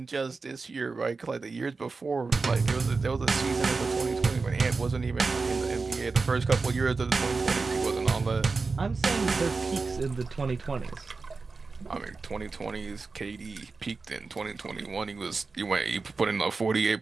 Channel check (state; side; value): quieter; left; 4.2 dB